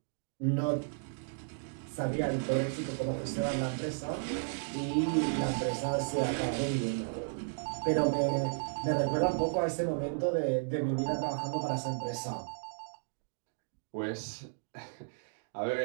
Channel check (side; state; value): left; silent; digital silence